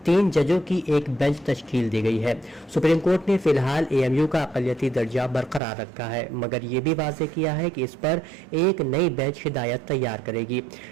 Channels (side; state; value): left; drops out; at 5.6 s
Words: 3 जजों की एक बेंच तश्कील दी गई है। सुप्रीम कोर्ट ने फिलहाल AMU का अक़लियती दर्जा बरकरार रखा है, मगर ये भी वाज़ेह किया है कि इस पर एक नई बेंच हिदायत तैयार करेगी।